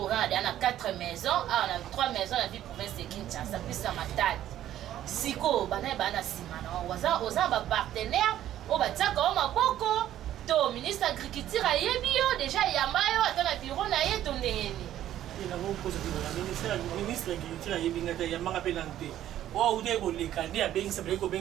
on a 4 maisons, on a 3 maisons la vie province de Kinshasa plus ça matadi. Siko bana simana. Oza ba partenaire, o ba tsaka o maboko. To ministre agriculture ayebi yo déjà yamba yo atana bureau na ye to ndengeni. Il a bon poser le ministre agriculture ayebi ngata yamba pe nante. O ude ko lekande a bengisa ko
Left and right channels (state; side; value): quieter; left; 12.2 dB